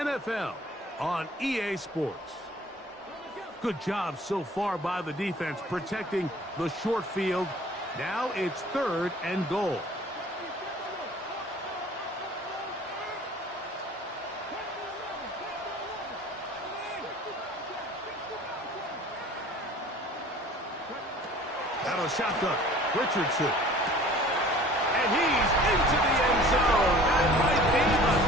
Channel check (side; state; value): both; normal; correlation 0.48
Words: on EA Sports. Good job so far by the defense protecting the short field. Now it's 3rd and goal. Out of shotgun, Richardson. And he's into the end zone. That might be the